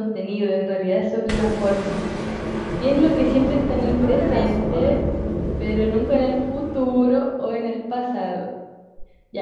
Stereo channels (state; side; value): identical; both; correlation 1.00